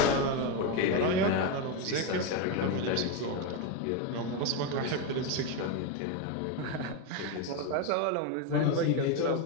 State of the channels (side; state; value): both; different; correlation 0.03